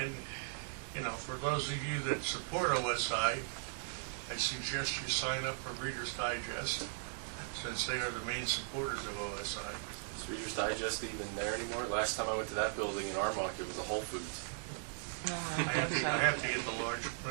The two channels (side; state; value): left; silent; 52 dB below the other